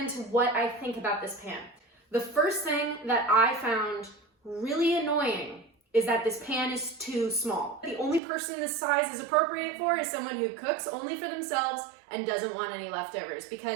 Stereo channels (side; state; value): left; drops out; at 8.2 s